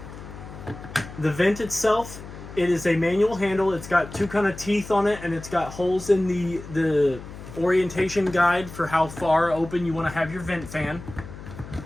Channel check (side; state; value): left; noise; hum, 14 dB below the sound